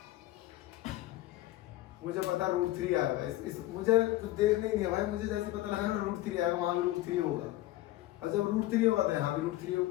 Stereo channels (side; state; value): right; quieter; 16.1 dB